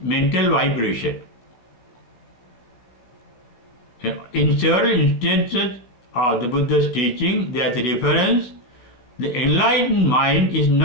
mental vibration. In several instances of the Buddha's teaching, there is a reference. The enlightened mind is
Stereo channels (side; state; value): right; late; 16 ms